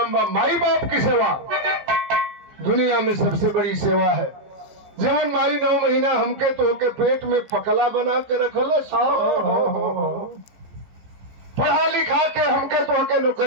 बा। माई बाप की सेवा दुनिया में सबसे बड़ी सेवा है। जवन माई 9 महीना हमके तो के पेट में पकला बना के रखल पढ़ा लिखा के हमके तो के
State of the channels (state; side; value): late; left; 15 ms